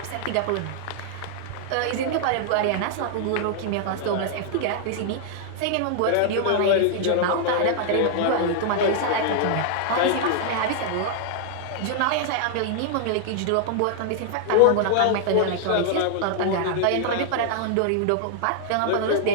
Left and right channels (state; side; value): different; both; correlation -0.01